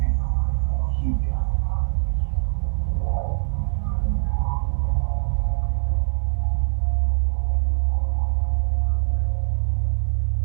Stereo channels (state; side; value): silent; left; 61 dB below the other